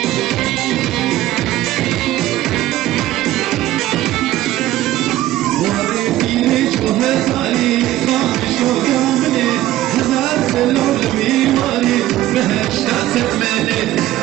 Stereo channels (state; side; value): quieter; left; 14.9 dB